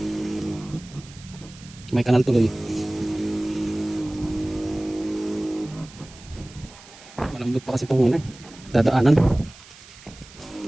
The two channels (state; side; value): noise; right; hiss, 20 dB below the sound